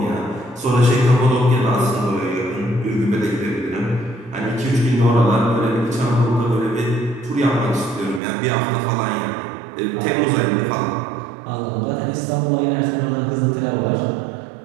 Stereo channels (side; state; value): left; drops out; at 8.2 s